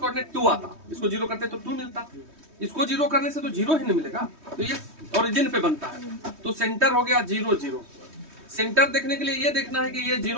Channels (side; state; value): left; late; 3.2 ms